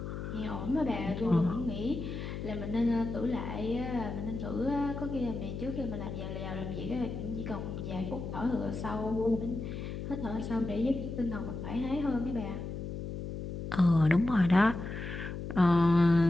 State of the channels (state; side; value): noise; left; hum, 6 dB below the sound